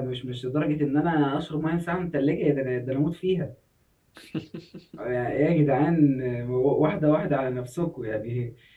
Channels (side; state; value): both; identical; correlation 1.00